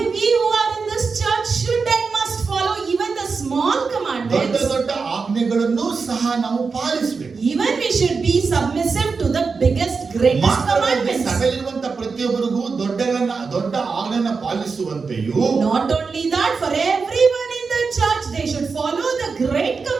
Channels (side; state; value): left; quieter; 4.9 dB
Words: we who are in this church should and must follow even the small ದೊಡ್ಡ commandments. ದೊಡ್ಡ ಆಜ್ಞೆಗಳನ್ನು ಸಹ ನಾವು ಪಾಲಿಸಬೇಕು. Even we should be submissive to the biggest, greatest commandments. ಸಭೆಯಲ್ಲಿರುವಂತ ಪ್ರತಿಯೊಬ್ಬರಿಗೂ ದೊಡ್ಡ ಆಜ್ಞೆಯನ್ನು ಪಾಲಿಸುವಂತೆಯೂ, Not only that, for everyone in the church, they should follow the great